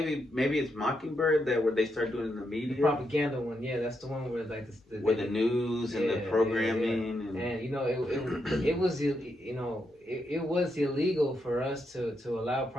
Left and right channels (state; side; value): normal; both; correlation 0.82